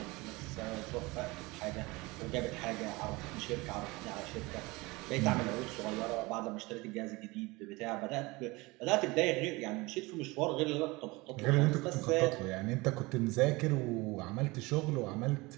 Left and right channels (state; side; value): quieter; left; 23.2 dB